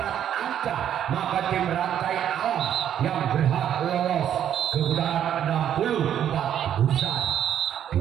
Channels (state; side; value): quieter; left; 10.0 dB